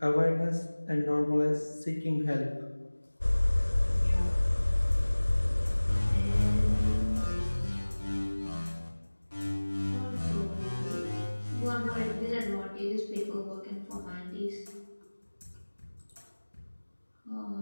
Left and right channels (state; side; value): inverted; both; correlation -1.00